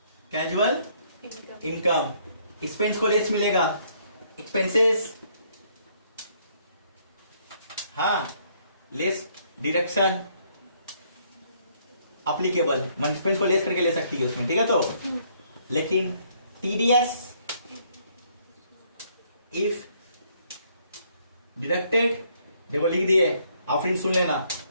casual income, expense को लेस मिलेगा, एक्सपेंसेस, हाँ, लेस डिडक्शन अप्लीकेबल, एक्सपेंस को लेस करके ले सकती है उसमें, ठीक है। तो लेकिन TDS इफ डिडक्टेड, देखो लिख दिए, आप फिर सुन लेना,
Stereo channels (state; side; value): inverted; both; correlation -0.67